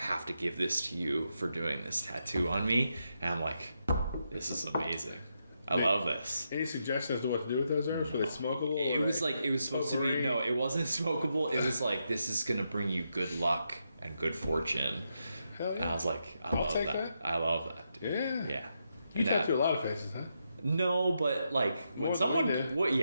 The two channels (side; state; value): both; inverted; correlation -0.83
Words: have to give this to you for doing this tattoo on me. And I'm like, this is amazing. I love this. Any suggestions to what to do with those herbs? Were they smokable? It was like, it was supposed to be, potpourri? no, it wasn't smokable. It was like, this is going to bring you good luck and good fortune. Hell yeah. And I was like, I'll love take that. that. I love that. Dude. Yeah. Yeah. You And that- tattoo a lot of faces, huh? No, but like More when than someone, we